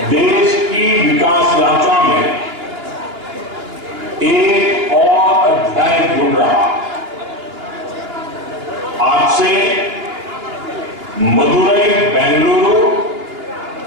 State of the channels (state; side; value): late; left; 2.9 ms